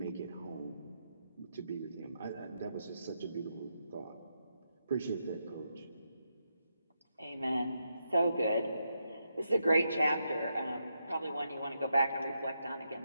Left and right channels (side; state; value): both; inverted; correlation -0.83